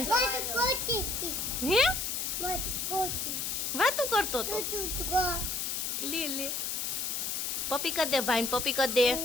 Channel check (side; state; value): left; noise; hiss, 1 dB below the sound